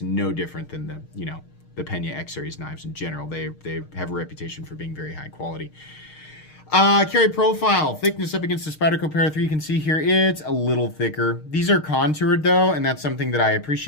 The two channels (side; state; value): right; late; 6.5 ms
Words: no different than the Pena X Series knives in general. They have a reputation for being very high quality. Carry profile, thickness up against the Spyderco Para 3, you can see here, it's a little thicker. These are contoured though, and that's something that I